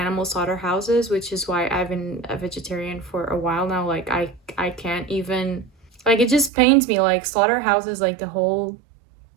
slaughterhouses, which is why I've been a vegetarian for a while now. Like I can't even, like, it just pains me. Like slaughterhouses, like the whole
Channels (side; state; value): left; drops out; at 6.5 s